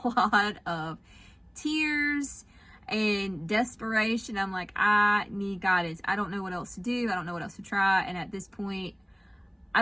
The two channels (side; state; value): both; identical; correlation 1.00